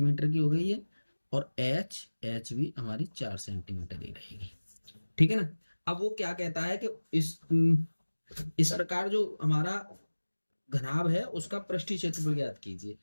की हो गई है, और एच भी हमारी 4 सेंटीमीटर ही रहेगी। ठीक है ना। अब वो क्या कहता है कि इस प्रकार जो हमारा घनाभ है उसका पृष्ठीय क्षेत्रफल ज्ञात कीजिए।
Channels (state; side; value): inverted; both; correlation -1.00